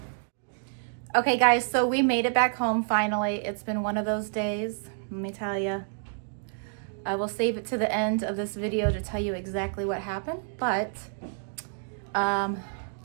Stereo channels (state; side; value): silent; left; digital silence